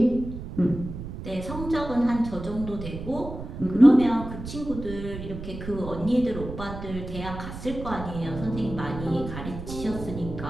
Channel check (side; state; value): right; noise; rumble, 9 dB below the sound